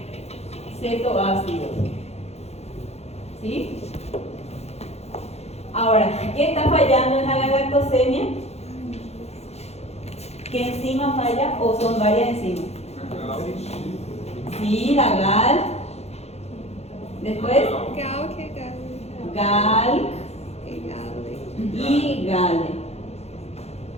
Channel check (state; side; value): late; right; 0.31 ms